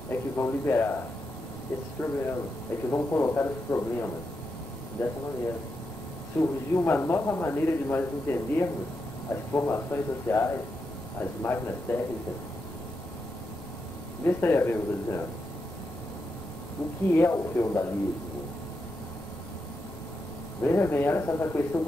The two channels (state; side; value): normal; both; correlation 0.85